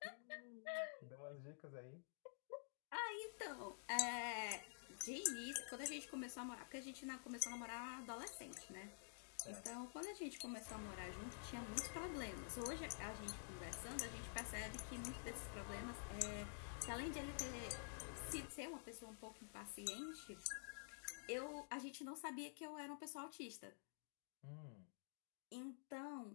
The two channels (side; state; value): right; silent; digital silence